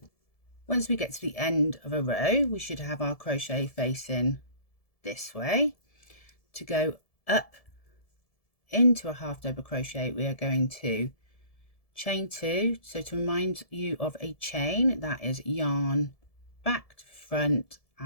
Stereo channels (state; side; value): late; right; 1.7 ms